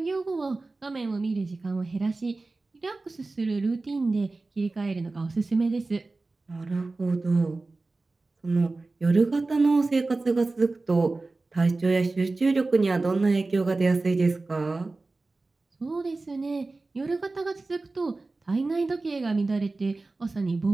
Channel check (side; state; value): left; quieter; 3.4 dB